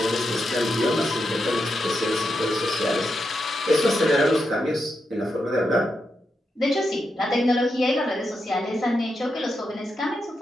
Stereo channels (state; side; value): normal; both; correlation 0.85